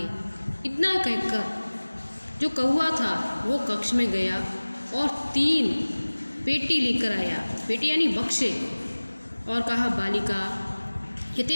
इतना कहकर जो कौवा था वो कक्ष में गया और 3 पेटी लेकर आया, पेटी यानी बक्से, और कहा बालिका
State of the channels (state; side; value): inverted; both; correlation -1.00